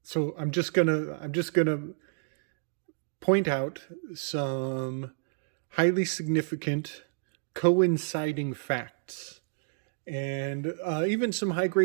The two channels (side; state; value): left; silent; digital silence